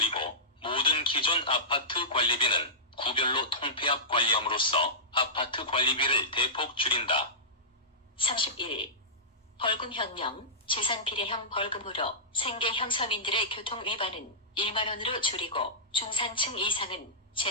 모든 기존 아파트 관리비는 구별로 통폐합 관리함으로써 아파트 관리비를 대폭 줄인다. 31. 벌금혁명. 재산피해형 벌금으로 생계형 서민들의 교통위반은 1만원으로 줄이고 중산층 이상은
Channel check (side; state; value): both; normal; correlation -0.19